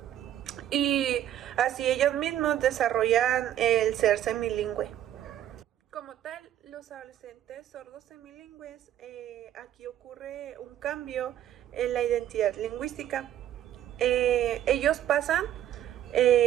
y así ellos mismos desarrollan el ser semilingüe. Como tal, los adolescentes sordos semilingües, aquí ocurre un cambio en la identidad lingüística. Ellos pasan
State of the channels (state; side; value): quieter; left; 11.6 dB